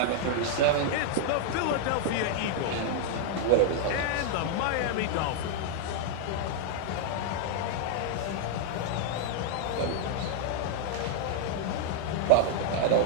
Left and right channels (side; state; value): both; different; correlation -0.01